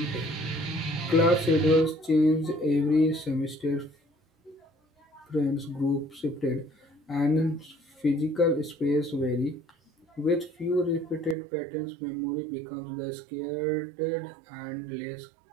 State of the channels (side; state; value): left; drops out; at 11.4 s